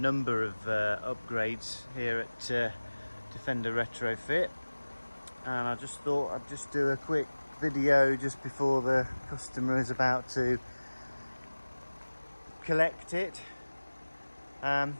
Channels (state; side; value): inverted; both; correlation -1.00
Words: of upgrades here at Defender Retrofit, and I just thought I'd just do a quick video just before the customer is about to collect it.